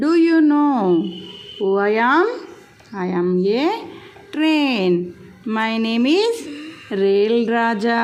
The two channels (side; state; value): both; identical; correlation 1.00